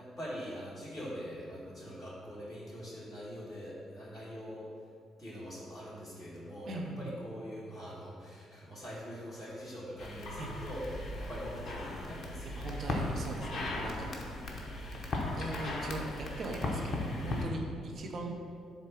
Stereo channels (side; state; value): both; normal; correlation 0.71